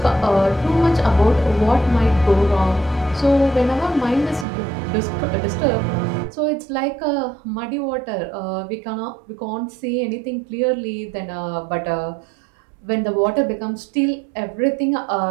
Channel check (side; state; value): left; drops out; at 4.5 s